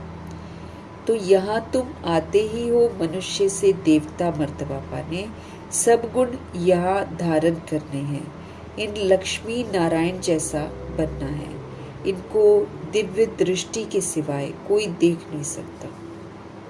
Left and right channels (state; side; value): identical; both; correlation 1.00